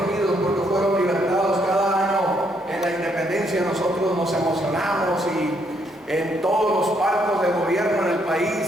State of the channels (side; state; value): both; normal; correlation 0.72